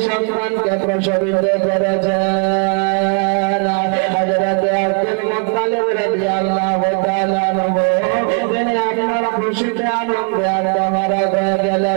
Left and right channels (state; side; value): quieter; left; 39.9 dB